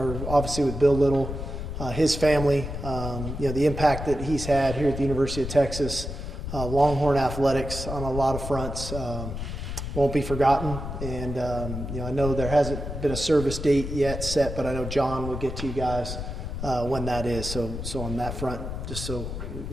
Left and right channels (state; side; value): noise; left; rumble, 6 dB below the sound